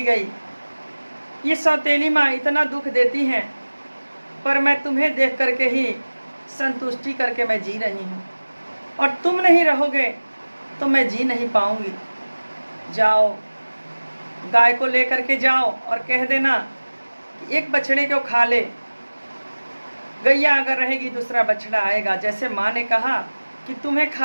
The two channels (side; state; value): both; inverted; correlation -1.00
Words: गई। ये सौतेली माँ इतना दुख देती हैं, पर मैं तुम्हें देख करके ही संतुष्टि करके मैं जी रही हूँ, और तुम नहीं रहोगे तो मैं जी नहीं पाऊँगी। जाओ गाय को लेकर के जाओ और कह देना कि एक बछड़े को खा ले, गैया अगर रहेगी दूसरा बछड़ा आएगा। जैसे माँ ने कहा कि तुम्हें